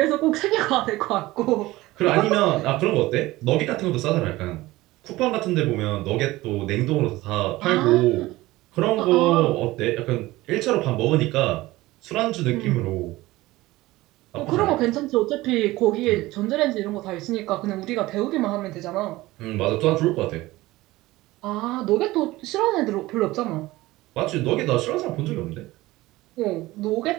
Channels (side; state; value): left; quieter; 18.6 dB